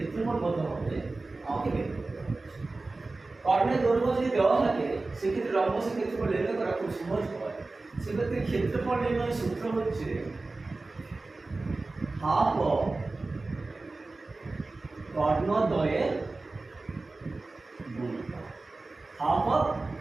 কত হবে আমাকে বের করতে হবে। কর্ণের দৈর্ঘ্য যদি দেওয়া থাকে সেক্ষেত্রে রম্বসের ক্ষেত্রফল নির্ণয় করা খুব সহজ হয়। সেক্ষেত্রে ক্ষেত্রফল নির্ণয়ের সূত্র হচ্ছে হাফ অফ কর্ণদ্বয়ের গুণফল। হাফ অফ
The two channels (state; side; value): quieter; left; 3.4 dB